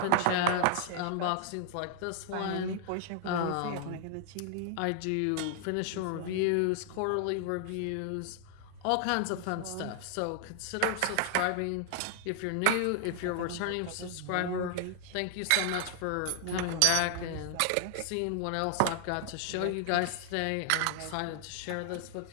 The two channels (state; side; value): different; both; correlation 0.00